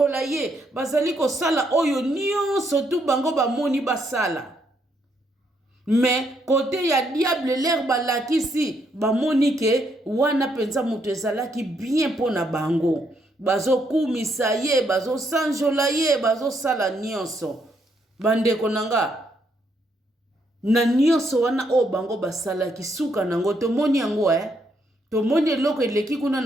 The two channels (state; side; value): normal; both; correlation 0.75